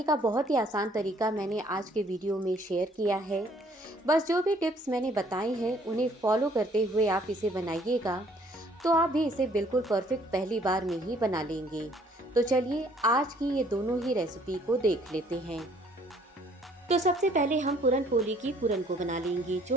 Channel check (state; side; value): normal; both; correlation 0.61